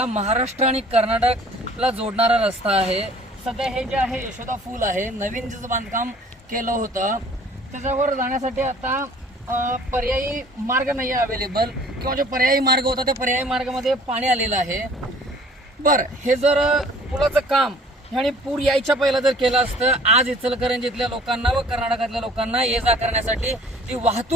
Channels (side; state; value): both; normal; correlation 0.52